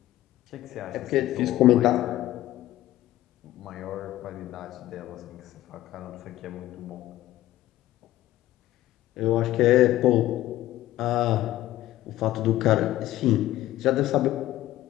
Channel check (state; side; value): quieter; right; 14.9 dB